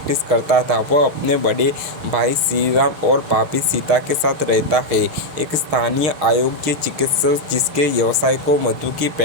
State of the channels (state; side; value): late; left; 6.7 ms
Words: करता था। वह अपने बड़े भाई श्रीराम और भाभी सीता के साथ रहता है, एक स्थानीय अयोग्य चिकित्सक जिसके व्यवसाय को मधु की